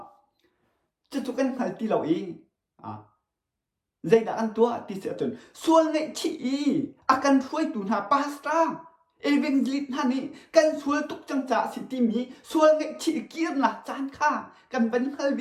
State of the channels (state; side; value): identical; both; correlation 1.00